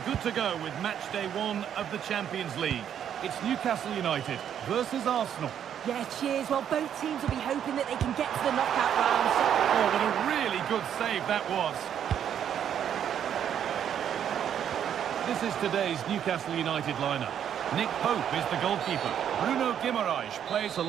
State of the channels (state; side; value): quieter; left; 9.3 dB